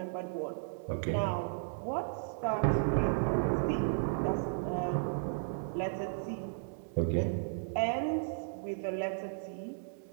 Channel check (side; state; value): left; silent; digital silence